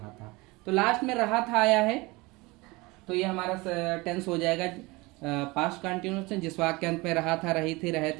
था। तो लास्ट में रहा था आया है, तो ये हमारा टेंस हो जाएगा पास्ट कंटिन्यूअस टेंस। जिस वाक्य के अंत में रहा था, रही थी, रहे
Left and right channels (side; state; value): left; quieter; 23.5 dB